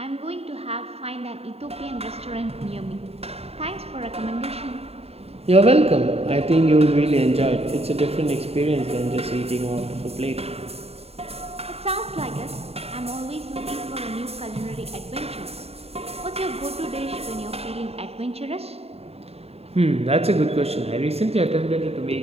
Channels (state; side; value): late; left; 0.29 ms